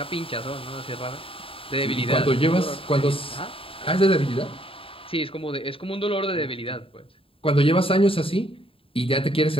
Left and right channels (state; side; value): late; right; 0.27 ms